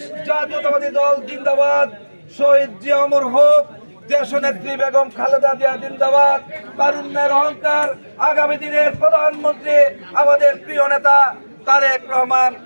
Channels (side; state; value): both; inverted; correlation -1.00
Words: জাতীয়তাবাদী দল জিন্দাবাদ, শহীদ জিয়া অমর হোক, দেশনেত্রী বেগম খালেদা জিয়া জিন্দাবাদ, তারুণ্যের অহংকার, আগামী দিনের প্রধানমন্ত্রী আমাদের প্রিয় নেতা তারেক রহমান